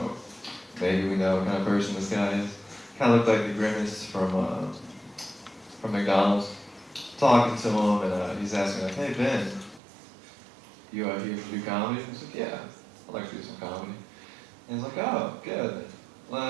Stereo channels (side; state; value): left; drops out; at 9.8 s